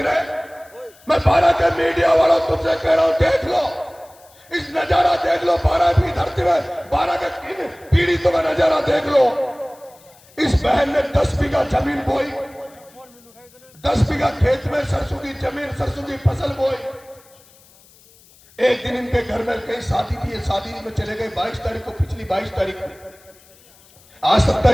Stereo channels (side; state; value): left; noise; hiss, 27 dB below the sound